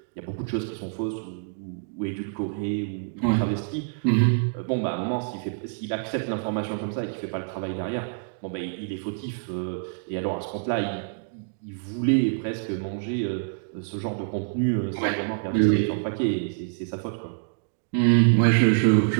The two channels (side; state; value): left; silent; digital silence